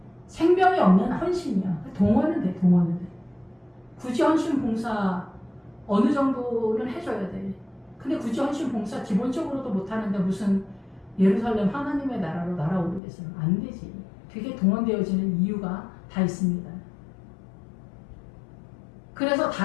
생명이 없는 헌신이야. 동원은 돼, 동원은 돼. 굳이 헌신 봉사 어느 정도는 해줘야 돼. 근데 굳이 헌신 봉사 기본적으로도 못하는데 무슨 예루살렘 하나님의 나라로 날아오르겠어요? 안 되지. 그게 동원되어지는 이유가 다 있습니다. 그래서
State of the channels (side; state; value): right; drops out; at 13.0 s